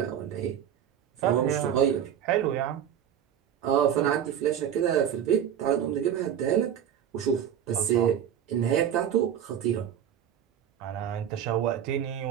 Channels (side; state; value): left; quieter; 9.5 dB